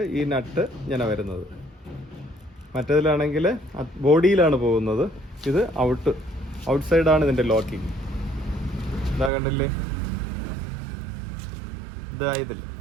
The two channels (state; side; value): drops out; left; at 9.3 s